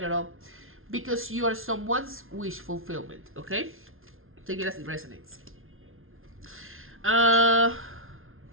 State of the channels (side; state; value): left; late; 0.61 ms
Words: because you are someone's wish fulfillment, okay? Take it as it resonates. Now